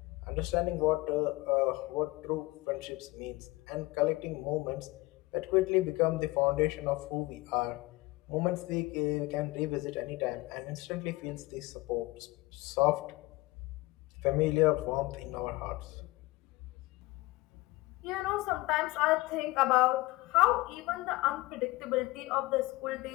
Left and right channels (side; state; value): right; quieter; 20.9 dB